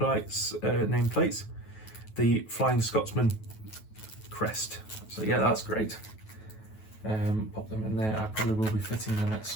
the Flying Scotsman crest. So yeah, that's great. Pop them in there. I probably will be fitting them at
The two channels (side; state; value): right; late; 9.3 ms